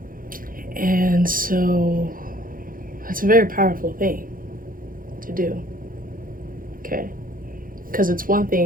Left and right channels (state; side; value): late; left; 0.41 ms